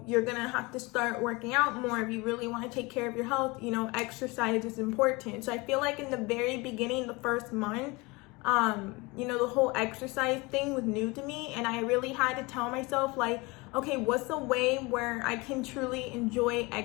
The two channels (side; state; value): right; quieter; 24.9 dB